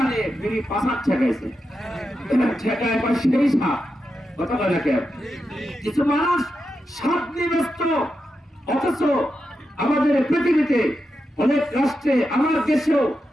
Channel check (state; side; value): normal; both; correlation 0.88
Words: বিড়ি পাশার ঠেকাইছে, ঠেকায় পর সেই সাপ কথা বলে কেন? কিছু মানুষ সাপ নিয়ে ব্যস্ত, অথচ আমাদের পৃথিবীতে অনেক রাষ্ট্রে, আমার দেশেও